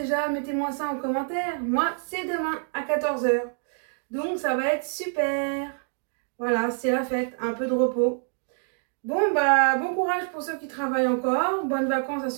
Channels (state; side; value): silent; left; 59 dB below the other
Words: Mettez-moi ça en commentaire. Moi, c'est demain à 14 h. Donc, ça va être super. Voilà, c'est la fête, un peu de repos. Bon, bah, bon courage pour ceux qui travaillent encore. Bonnes vacances à